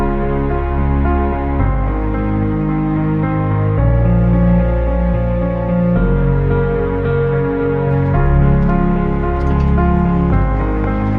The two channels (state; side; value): identical; both; correlation 1.00